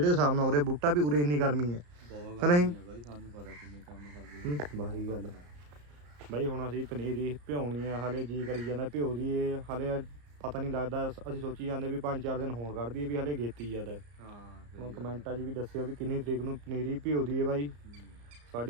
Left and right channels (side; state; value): left; late; 34 ms